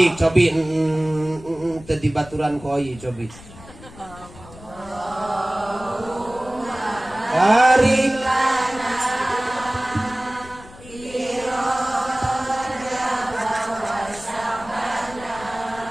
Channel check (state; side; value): noise; left; rumble, 19 dB below the sound